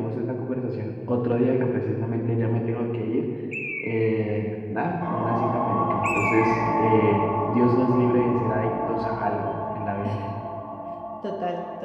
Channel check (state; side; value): identical; both; correlation 1.00